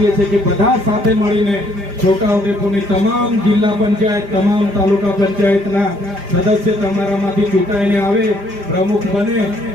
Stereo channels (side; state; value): left; late; 5.0 ms